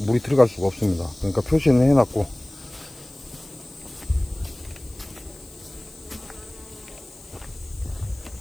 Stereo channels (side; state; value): left; noise; hiss, 23 dB below the sound